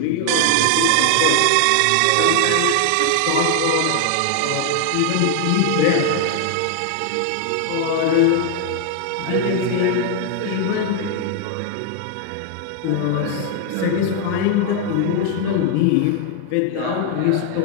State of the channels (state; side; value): different; both; correlation 0.00